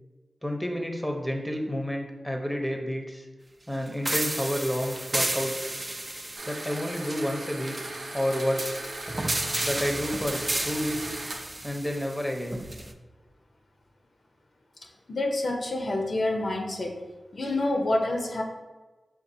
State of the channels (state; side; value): normal; both; correlation 0.95